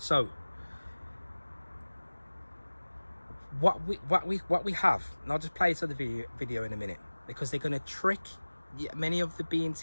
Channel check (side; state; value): both; inverted; correlation -1.00